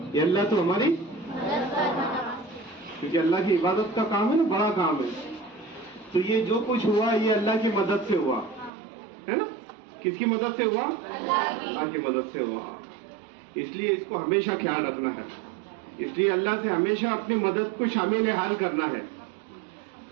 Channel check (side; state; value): left; drops out; at 8.7 s